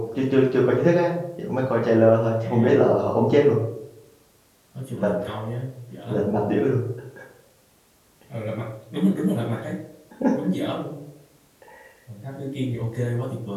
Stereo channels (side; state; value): both; identical; correlation 1.00